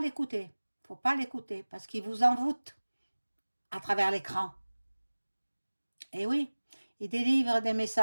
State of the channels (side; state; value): both; inverted; correlation -1.00